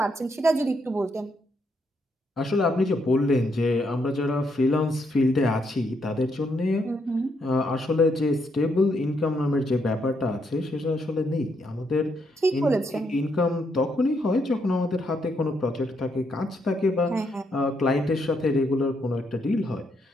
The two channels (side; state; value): both; normal; correlation 0.76